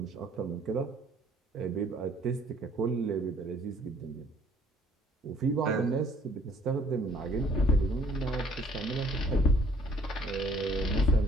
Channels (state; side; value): normal; both; correlation 0.58